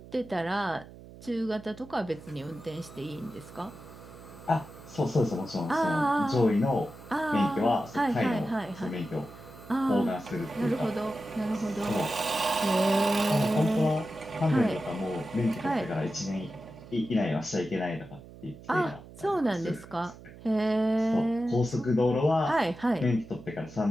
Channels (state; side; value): noise; right; hum, 18 dB below the sound